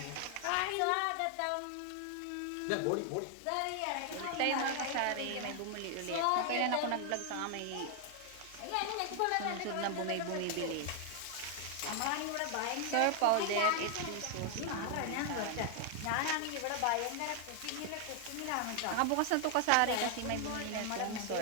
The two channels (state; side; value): different; both; correlation 0.00